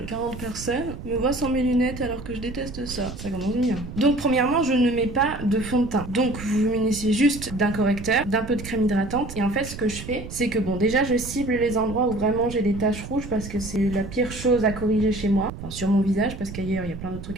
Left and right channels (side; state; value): right; noise; rumble, 11 dB below the sound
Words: 40 personnes me voient sans mes lunettes alors que je déteste ça. Ça commence bien. Donc, premièrement, je ne mets pas de fond de teint. Donc, vous vous munissez juste d'un correcteur, d'un peu de crème hydratante. Et en fait, ce que je fais, c'est que bon, déjà, je cible les endroits où vraiment j'ai des taches rouges parce que c'est la pire chose à corriger chez moi. Enfin, sur mon visage, parce qu'ailleurs, il y a plein d'autres